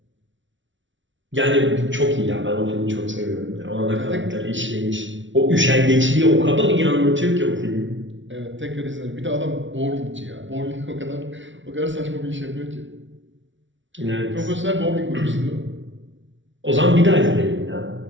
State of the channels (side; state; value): left; late; 0.55 ms